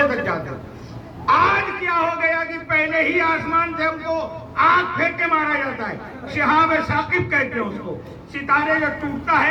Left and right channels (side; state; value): both; identical; correlation 1.00